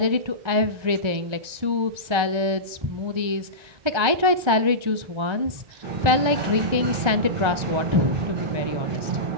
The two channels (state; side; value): late; left; 1.3 ms